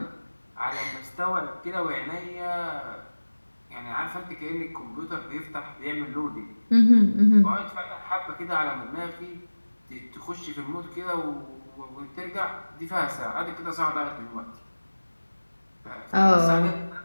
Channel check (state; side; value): inverted; both; correlation -1.00